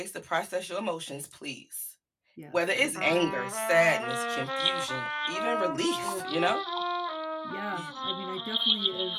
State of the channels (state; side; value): identical; both; correlation 1.00